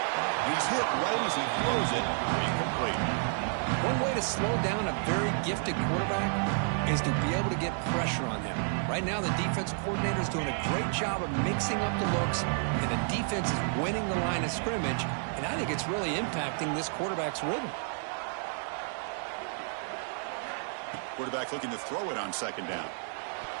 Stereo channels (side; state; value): left; silent; 57 dB below the other